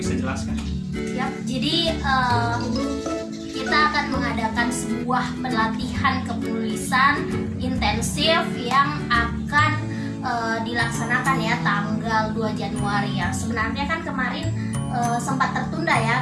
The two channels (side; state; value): both; identical; correlation 1.00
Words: jelaskan. Ya, jadi kita akan mengadakan sebuah pelatihan kepenulisan intensif yang akan dilaksanakan ya tanggal 2 Januari ya. Sebenarnya kan kemarin sempat tertunda